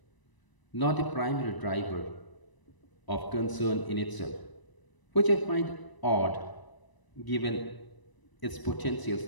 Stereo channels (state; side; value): late; right; 1.0 ms